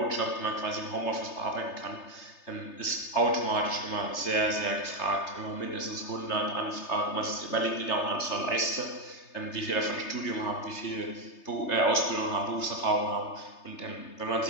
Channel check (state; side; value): late; right; 3.3 ms